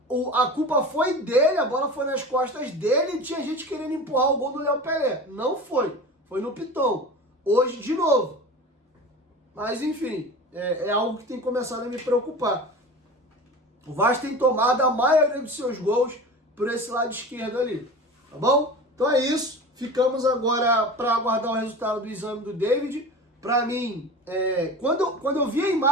a culpa foi dele, a bola foi nas costas dele e tinha gente querendo empurrar o gol do Léo Pelé. Não foi. Foi no Piton. Hoje, de novo. Mas, enfim, é algo que tem começado a me preocupar. O Vasco tem tomado a maioria dos seus gols por esse lado esquerdo ali. Tá bom? Então é isso. Ficamos agora para aguardar o resultado do exame do David. Para mim, quando eu vi a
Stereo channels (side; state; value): both; normal; correlation 0.34